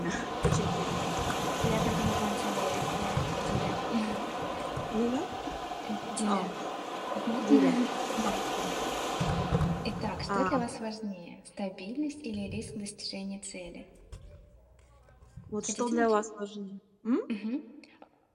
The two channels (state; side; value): identical; both; correlation 1.00